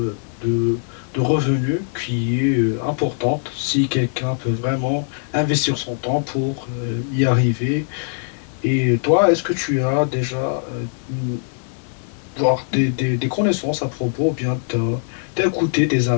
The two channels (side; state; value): right; silent; digital silence